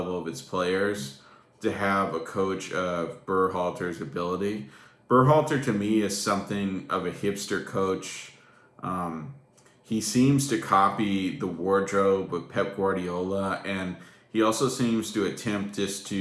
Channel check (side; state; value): both; identical; correlation 1.00